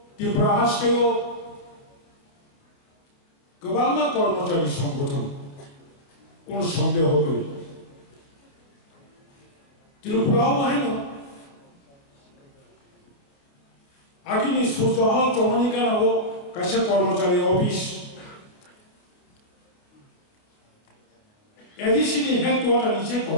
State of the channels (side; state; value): right; late; 29 ms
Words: त्रिपुरा हादसायाव गोबां कर्मचारी संगठन কোনো সন্দেহ করি त्रिपुराव बाहायनो आगिनि सुजहल चमनिकानाव कासे कर्मचारी अफिस एडिसिनि हेडक्वार्टार निसे